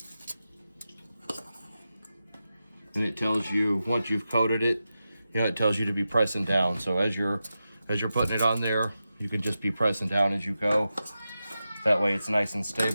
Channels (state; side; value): inverted; both; correlation -0.91